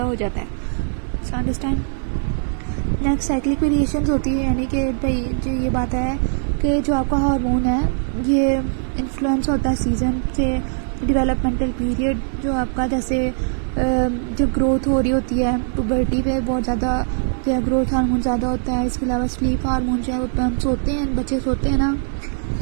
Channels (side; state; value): left; silent; digital silence